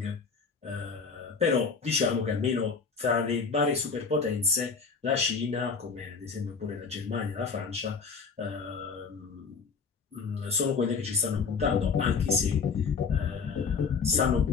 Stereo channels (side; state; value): right; quieter; 5.3 dB